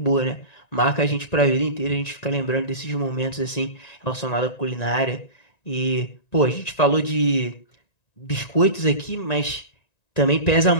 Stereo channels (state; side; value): late; right; 1.9 ms